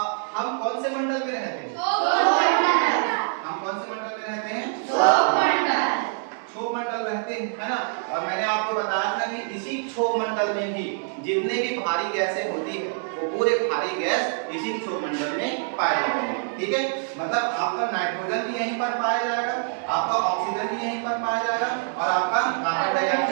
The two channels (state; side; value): silent; left; 61 dB below the other